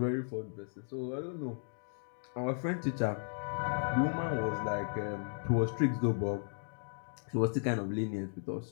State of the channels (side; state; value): right; silent; digital silence